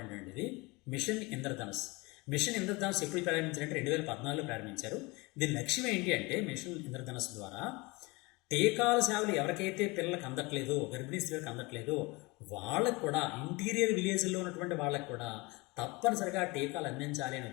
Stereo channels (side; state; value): right; quieter; 24.8 dB